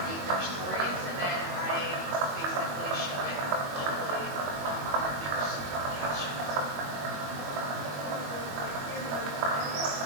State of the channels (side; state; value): left; late; 21 ms